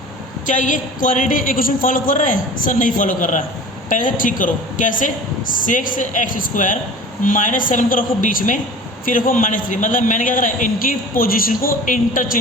क्या ये क्वाड्रेटिक इक्वेशन फॉलो कर रहा है, सर नहीं फॉलो कर रहा है। पहले से ठीक करो, कैसे, 6x² -7 को रखो बीच में, फिर रखो -3, मतलब मैंने क्या करा, इनकी पोजीशन को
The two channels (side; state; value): both; normal; correlation 0.40